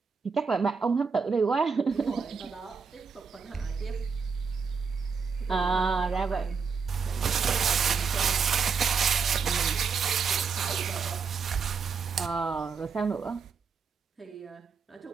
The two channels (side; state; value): left; quieter; 5.5 dB